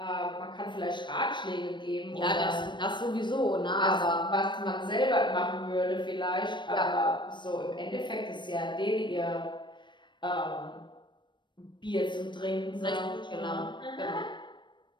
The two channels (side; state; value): right; late; 0.22 ms